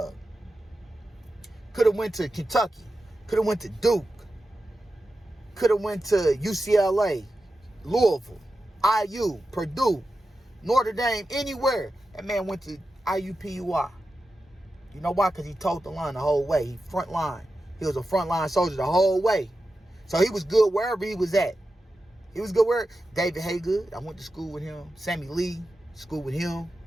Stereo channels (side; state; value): both; normal; correlation 0.91